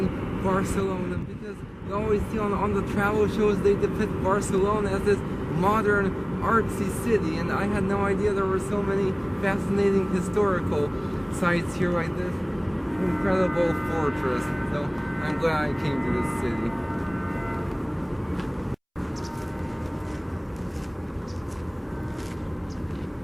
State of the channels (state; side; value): identical; both; correlation 1.00